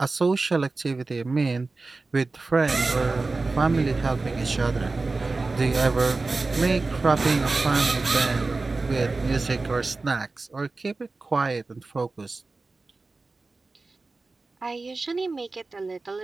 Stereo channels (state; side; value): quieter; left; 3.6 dB